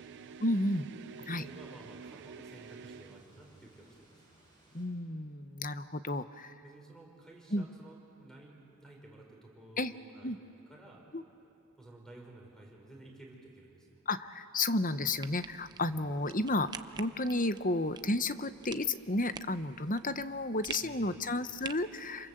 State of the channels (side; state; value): both; normal; correlation 0.42